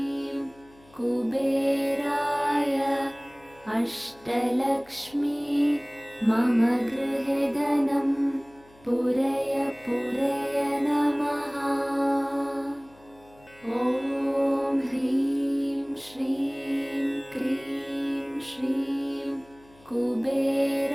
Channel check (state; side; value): noise; left; hum, 27 dB below the sound